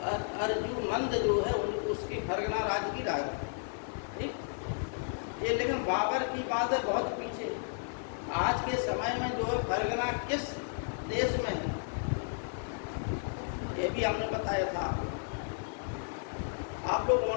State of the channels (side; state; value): right; silent; digital silence